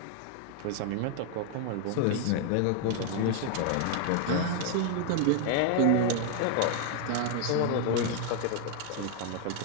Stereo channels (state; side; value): different; both; correlation 0.00